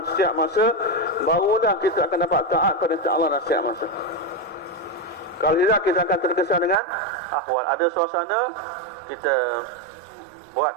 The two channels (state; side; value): drops out; left; at 6.8 s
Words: setiap masa, barulah kita akan dapat taat pada Allah dalam setiap masa. Kalau tidak, kita akan terkesan dengan ahwal. Ada suasana, kita buat